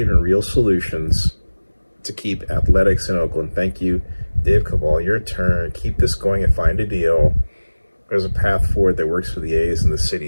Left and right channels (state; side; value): inverted; both; correlation -1.00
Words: and real solutions to keep athletics in Oakland. Thank you, Dave Cabal, your turn. Keep this going and find a deal. There's a path forward that works for the A's and the